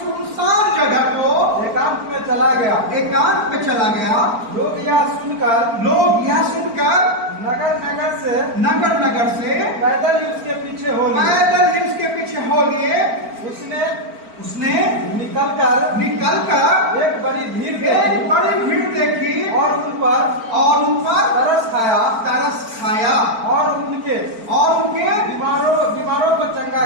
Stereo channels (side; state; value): left; late; 4.4 ms